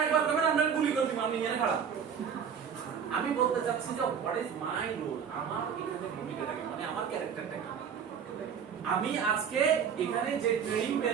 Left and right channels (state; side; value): quieter; left; 7.3 dB